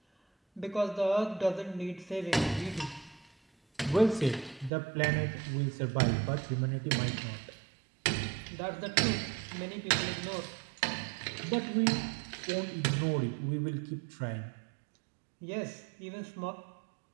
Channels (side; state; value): left; drops out; at 4.7 s